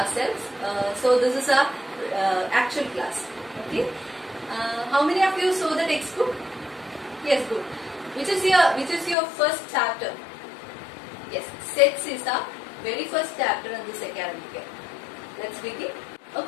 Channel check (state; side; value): drops out; right; at 9.2 s